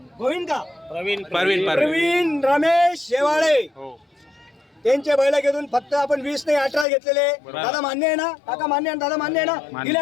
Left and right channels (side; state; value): right; drops out; at 6.9 s